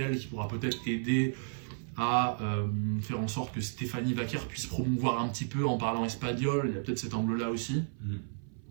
qui pourra peut-être aider à faire en sorte que Stéphanie Vaquer puisse promouvoir un petit peu en parlant espagnol, il y a peut-être cet angle là aussi.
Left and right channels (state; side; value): silent; left; 56 dB below the other